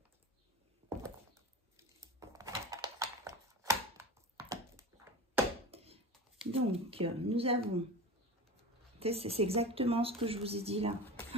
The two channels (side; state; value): both; normal; correlation 0.30